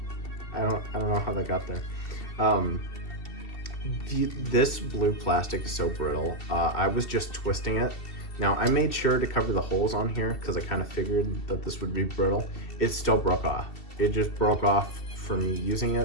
I don't know how that got there. This blue plastic is so brittle. I was just twisting it. Now I made sure to cover the holes on here because I kind of figured that this would be brittle. It still broke off. It just broke off from me using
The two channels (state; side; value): late; right; 2.7 ms